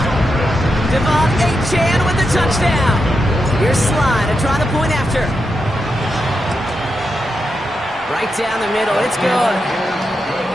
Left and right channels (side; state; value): both; normal; correlation 0.86